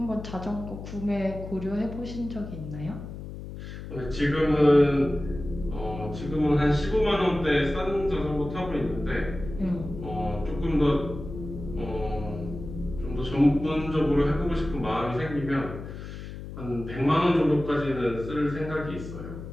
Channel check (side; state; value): left; noise; hum, 10 dB below the sound